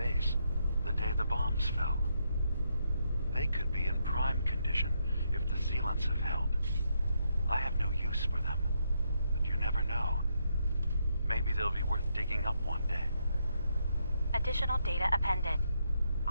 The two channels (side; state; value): both; inverted; correlation -0.79